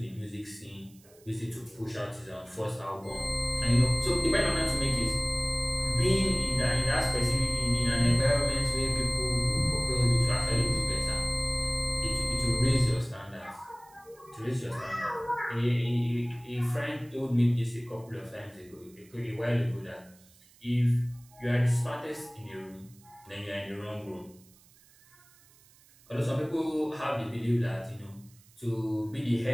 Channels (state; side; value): noise; right; hiss, 28 dB below the sound